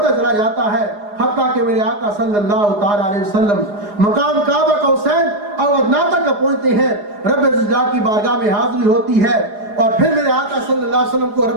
چلا جاتا ہے حتیٰ کہ میرے آقا صلی اللہ تعالیٰ علیہ وسلم مقام کعبہ قوسین اور ادنیٰ تک پہنچتے ہیں. رب ذوالجلال کی بارگاہ میں حاضری ہوتی ہے اور پھر میرے آقا صلی اللہ علیہ وسلم کو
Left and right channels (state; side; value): late; left; 4.9 ms